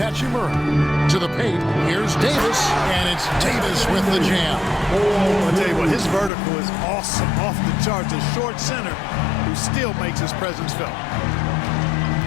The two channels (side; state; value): right; drops out; at 6.3 s